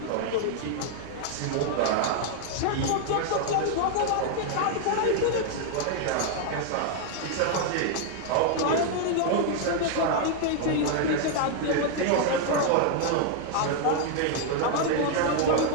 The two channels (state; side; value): different; both; correlation 0.00